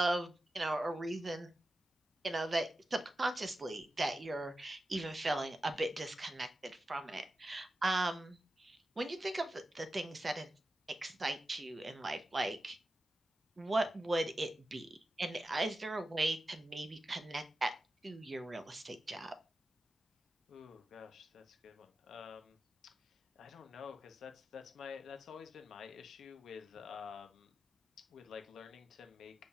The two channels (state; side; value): normal; both; correlation 0.92